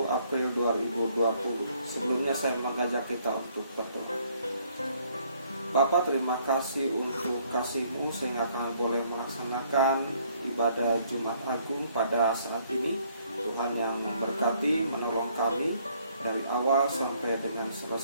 April 2020. Sebelumnya saya mengajak kita untuk berdoa. Bapa, terima kasih untuk kasih-Mu sehingga kami boleh melaksanakan ibadah Jumat Agung pada saat ini. Tuhan yang memberkati, menolong kami dari awal sampai dengan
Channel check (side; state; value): both; inverted; correlation -0.66